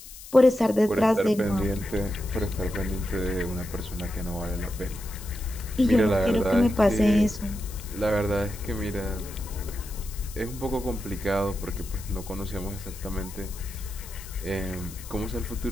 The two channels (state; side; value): noise; left; hiss, 15 dB below the sound